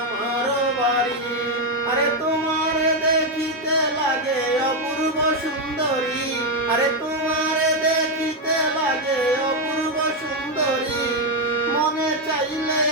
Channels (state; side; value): normal; both; correlation 0.04